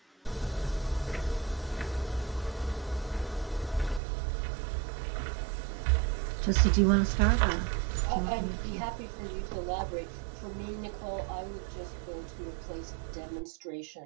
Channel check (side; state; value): left; drops out; at 4.0 s